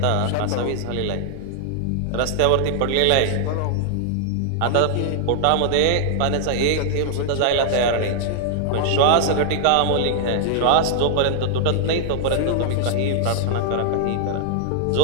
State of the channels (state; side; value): different; both; correlation 0.00